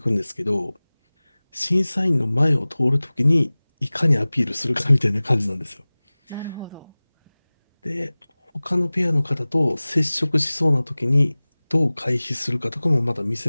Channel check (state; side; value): inverted; both; correlation -1.00